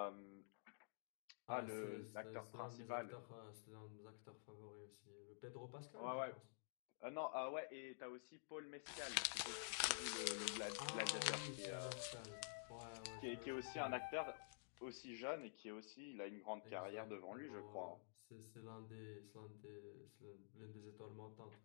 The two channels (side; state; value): right; silent; digital silence